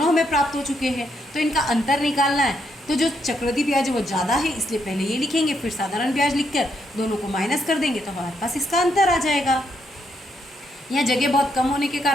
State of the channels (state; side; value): normal; both; correlation 0.77